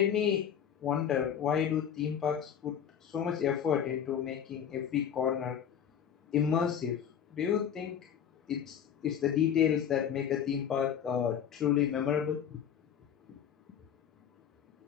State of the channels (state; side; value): quieter; right; 8.7 dB